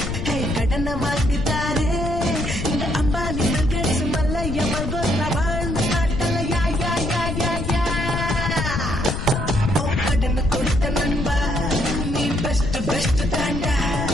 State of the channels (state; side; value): noise; left; rumble, 4 dB below the sound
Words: ஹே கடனை வாங்கிட்டாரு இந்த அம்பானி பில்கேட்ஸ் மல்லையா மல்கோத்ரா வாழ்ந்து காட்டல யா யா யா யா யா ஓ கடனை கொடுத்த நண்பா நீ பெஸ்ட் பெஸ்ட் தாண்டா